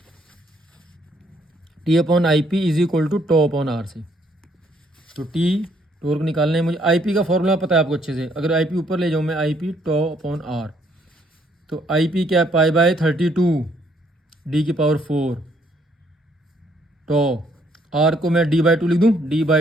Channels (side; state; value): both; normal; correlation 0.68